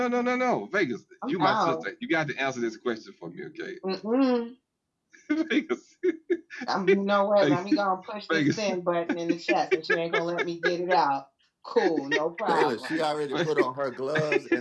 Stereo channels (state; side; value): identical; both; correlation 1.00